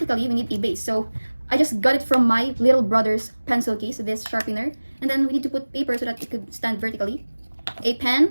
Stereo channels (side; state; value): both; inverted; correlation -1.00